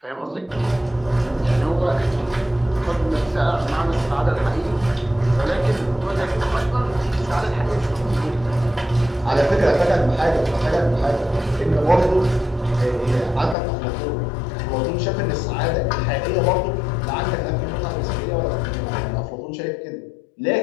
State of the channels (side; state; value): right; drops out; at 13.6 s